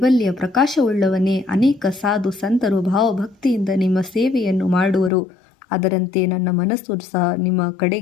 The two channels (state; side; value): drops out; right; at 5.1 s